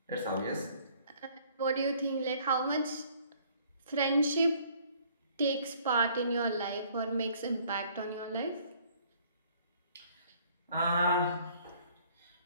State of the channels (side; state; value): both; inverted; correlation -0.59